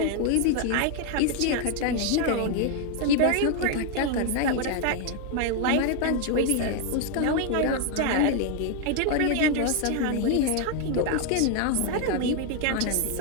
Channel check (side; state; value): both; different; correlation 0.00